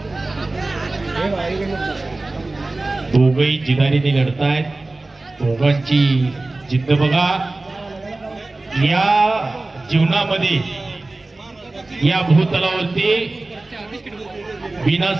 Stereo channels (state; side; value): quieter; left; 3.1 dB